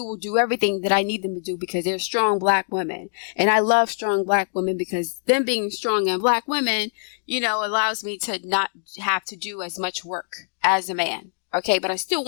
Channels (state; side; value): silent; right; digital silence